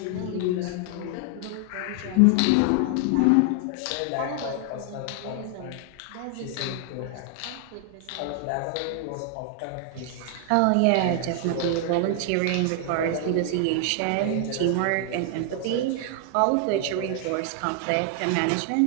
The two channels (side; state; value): both; different; correlation 0.00